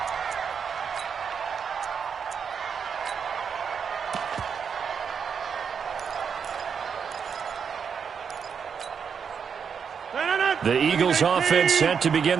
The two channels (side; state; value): left; quieter; 6.7 dB